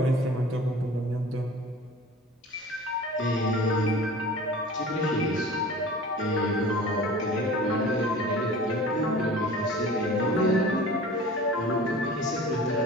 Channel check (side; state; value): both; normal; correlation 0.41